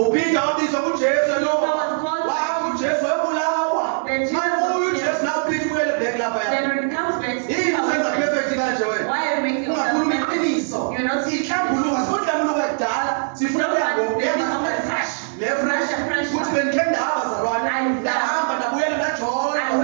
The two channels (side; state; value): left; silent; digital silence